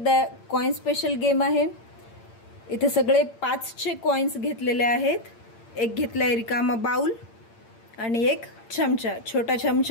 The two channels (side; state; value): right; late; 8.8 ms